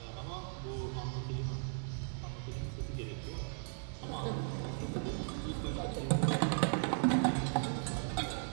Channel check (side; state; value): left; silent; 53 dB below the other